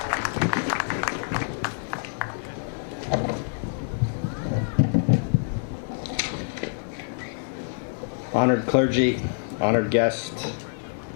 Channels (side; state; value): right; silent; digital silence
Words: Honored clergy, honored guests,